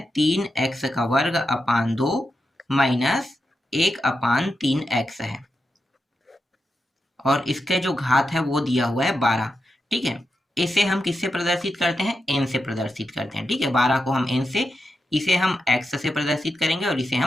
3x का वर्ग अपान 2 माइनस 1 अपान 3x है, और इसके जो घात है वो दिया हुआ है 12। ठीक है, इसे हम किससे प्रदर्शित करते हैं? n से प्रदर्शित करते हैं। ठीक है, 12 को हम n से, इसे हम x से प्रदर्शित करेंगे और इसे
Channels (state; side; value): normal; both; correlation 0.88